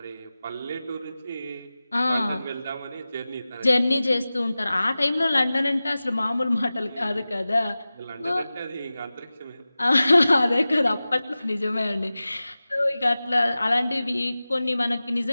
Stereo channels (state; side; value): inverted; both; correlation -0.96